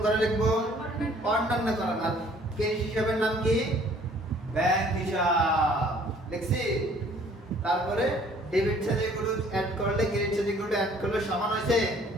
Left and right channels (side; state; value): both; normal; correlation 0.57